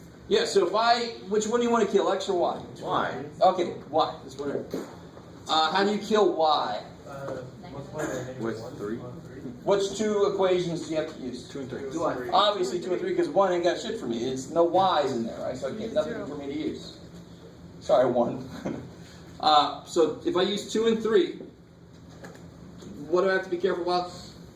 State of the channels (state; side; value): identical; both; correlation 1.00